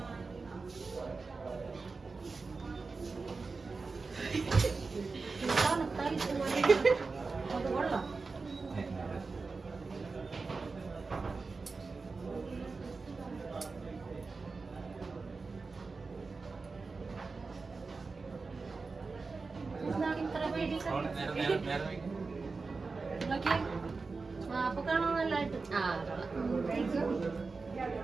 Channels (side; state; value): left; quieter; 4.2 dB